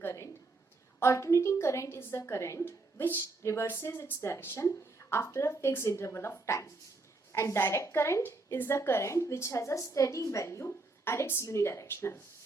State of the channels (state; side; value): quieter; left; 3.4 dB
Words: Alternating current is the current which reverses its direction after a fixed interval of time. And direct current is the current which has a steady value and it's unidirectional.